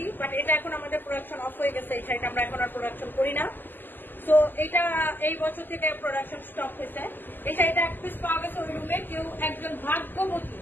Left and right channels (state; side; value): late; right; 0.090 ms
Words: বাট এটা এখন আমাদের প্রোডাকশন অফ হয়ে গেছে। এই শাড়িটা আমরা এখন আর প্রোডাকশন করি না, তো এটা এই বছর থেকে প্রোডাকশন স্টপ হয়েছে। এই শাড়িটা এক পিস পাওয়া গেছে ওই রুমে। কেউ একজন ভাগ্যবতী,